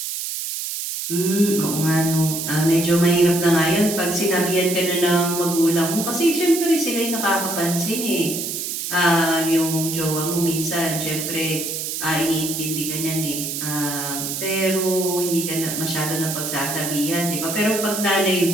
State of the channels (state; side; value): noise; right; hiss, 4 dB below the sound